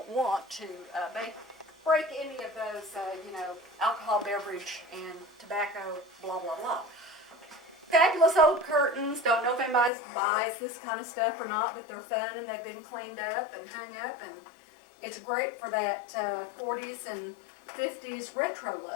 want to break any of those, alcohol beverage and tobacco, blah, blah, blah. Fabulous old curtains. Don't know if anybody buys this kind of stuff or not, but they're fun and they've been cleaned up and hung up, and it's great for that 40s and 50s retro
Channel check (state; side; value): drops out; right; at 9.9 s